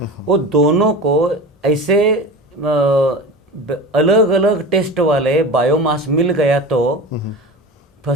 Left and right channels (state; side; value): normal; both; correlation 0.31